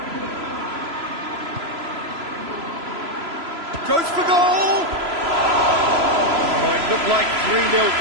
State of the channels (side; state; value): left; late; 3.0 ms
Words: Goes for goal! Oh, it looked like 3-0